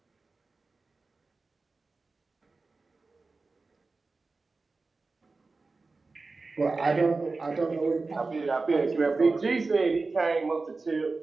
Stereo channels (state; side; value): quieter; left; 3.8 dB